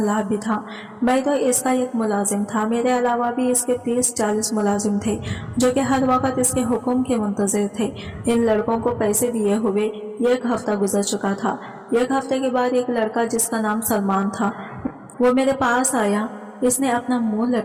भी था। मैं तो इसका एक मुलाजिम था, मेरे अलावा भी इसके 30-40 मुलाजिम थे जो कि हर वक्त इसके हुक्म के मुंतज़िर थे। इन लड़कों को पैसे दिए हुए 1 हफ्ता गुजर चुका था। 1 हफ्ते के बाद एक लड़का जिसका नाम सलमान था वो मेरे पास आया। इसने अपना मुंह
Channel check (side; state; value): both; identical; correlation 1.00